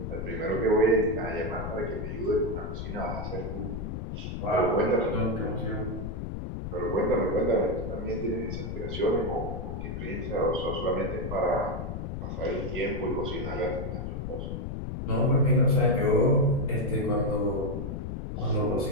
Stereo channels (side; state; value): left; noise; rumble, 5 dB below the sound